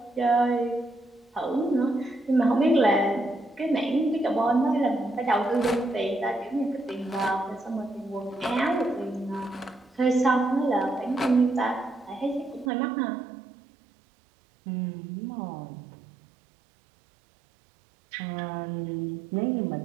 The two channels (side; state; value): left; drops out; at 12.7 s